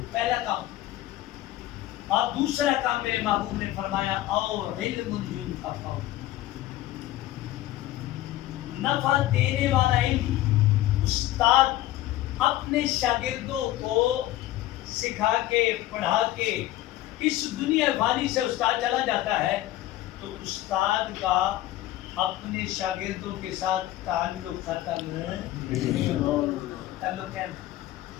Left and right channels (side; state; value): right; quieter; 15.1 dB